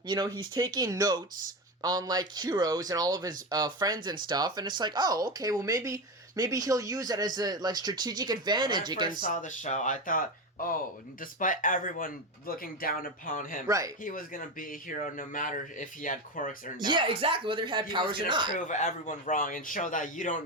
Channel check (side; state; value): both; normal; correlation 0.17